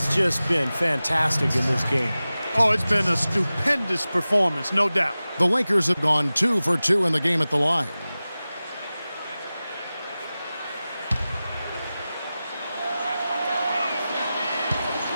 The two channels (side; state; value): both; inverted; correlation -0.96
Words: just been fantastic in this game. Oh, it's been a stupendous performance, no doubt. The Lakers have gone 2 for 2 in the game at the line.